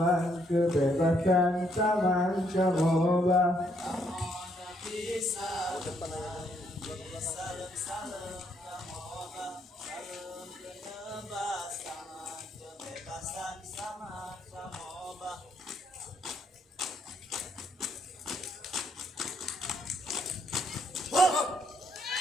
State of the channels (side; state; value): both; normal; correlation 0.72